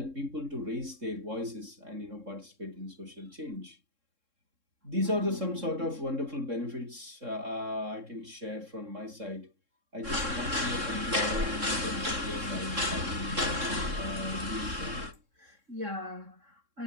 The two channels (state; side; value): late; left; 3.6 ms